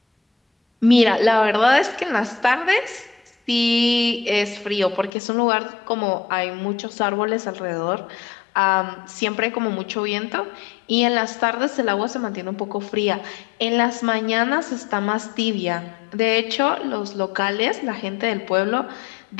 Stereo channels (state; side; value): drops out; right; at 5.1 s